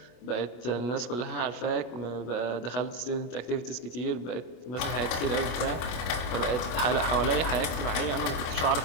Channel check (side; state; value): right; late; 25 ms